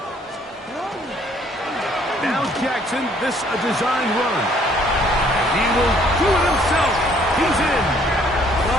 Now Jackson, this a design run. And he will do it himself. He's in.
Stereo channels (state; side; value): normal; both; correlation 0.62